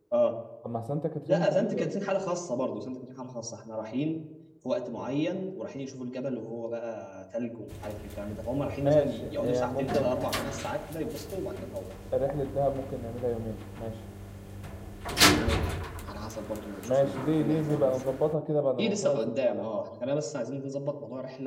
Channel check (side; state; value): both; identical; correlation 1.00